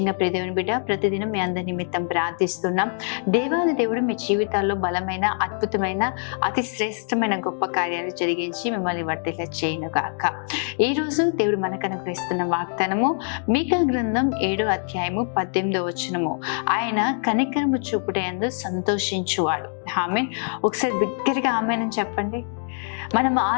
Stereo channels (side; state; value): right; silent; 63 dB below the other